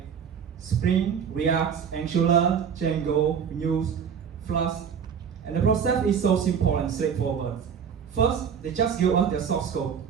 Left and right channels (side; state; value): left; quieter; 7.3 dB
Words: Spring, React, Angular, Django, Vue, Flask. And the process is so simple and straightforward. First, they just give us their source code.